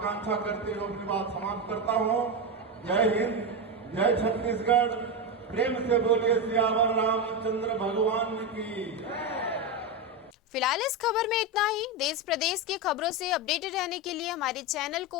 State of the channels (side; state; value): both; normal; correlation 0.12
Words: करते हुए अपनी बात समाप्त करता हूँ। जय हिंद, जय छत्तीसगढ़। प्रेम से बोलिए सियावर रामचंद्र भगवान की। फिलहाल इस खबर में इतना ही। देश प्रदेश की खबरों से अपडेटेड रहने के लिए हमारे चैनल